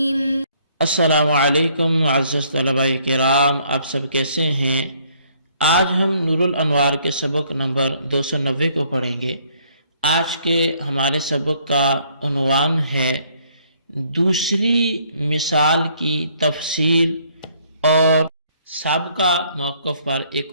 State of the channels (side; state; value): both; inverted; correlation -0.65